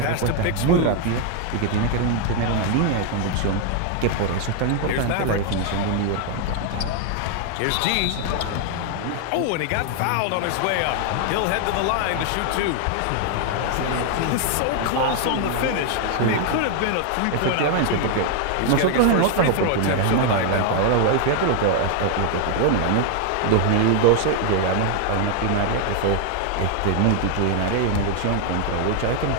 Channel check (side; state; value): both; different; correlation 0.00